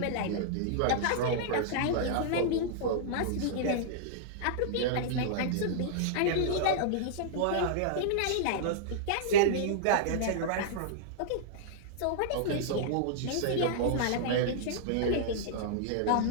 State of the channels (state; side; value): different; both; correlation -0.02